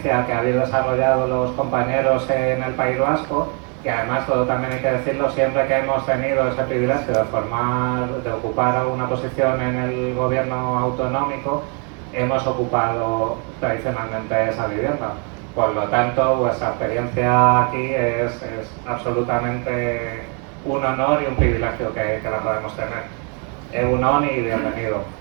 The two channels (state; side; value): quieter; left; 35.4 dB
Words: que habéis desarrollado los compañeros en el País Vasco, y además, todo también hay que decirlo, siempre que hemos tenido ese privilegio de ocupar una posición en el gobierno autonómico, hemos ocupado tradicionalmente esa vivienda. Por lo tanto, vuestra experiencia aquí es absolutamente un honor y un privilegio que la podemos tener. Egunon y bienvenido.